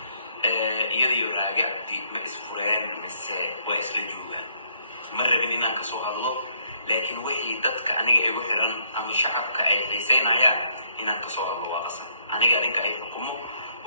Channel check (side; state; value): both; inverted; correlation -0.69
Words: iyadiyo raaga ma isfureen mise waa isla joogaan ma rabin inaan kasoo hadlo laakiin wixii dadka aniga igu xiran ama shacabka ay xiiseynayaan inaan kasoo hadlo waa qasab aniga adinka ay xukumo